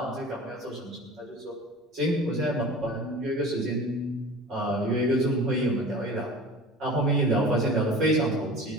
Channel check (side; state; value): both; normal; correlation 0.39